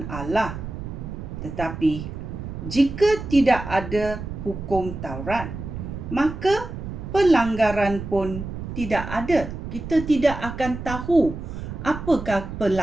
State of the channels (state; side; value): noise; right; rumble, 8 dB below the sound